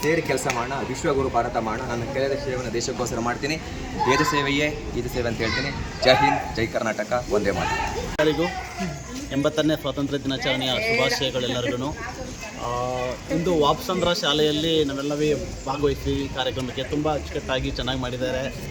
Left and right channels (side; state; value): both; identical; correlation 1.00